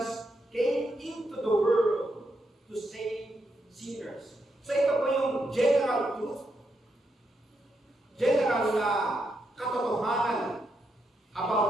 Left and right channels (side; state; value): both; normal; correlation 0.82